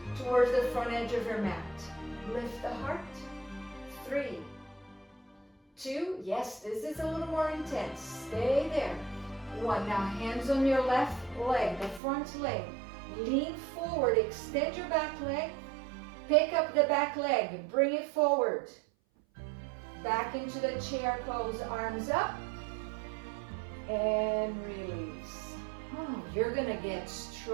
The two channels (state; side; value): drops out; left; at 12.0 s